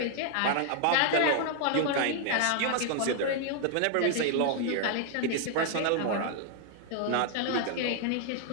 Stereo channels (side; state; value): both; different; correlation 0.00